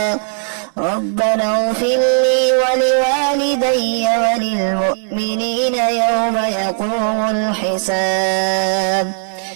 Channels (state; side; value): silent; left; digital silence